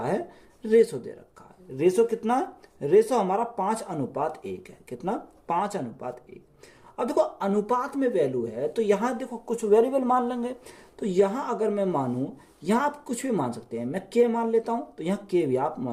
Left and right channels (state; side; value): identical; both; correlation 1.00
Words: है, रेशो दे रखा है। रेशो कितना, रेशो हमारा 5:1 है, कितना 5:1। अब देखो अनुपात में वैल्यू है, तो यहाँ देखो कुछ वेरिएबल मान लेंगे। तो यहाँ अगर मैं मानूं, यहाँ आप कुछ भी मान सकते हैं, मैं के मान लेता हूं, तो यहाँ के भी आप